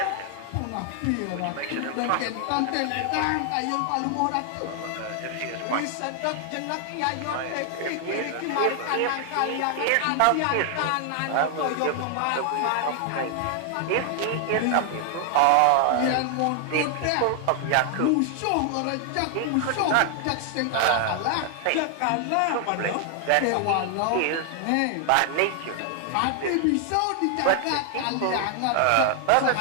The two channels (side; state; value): both; different; correlation 0.00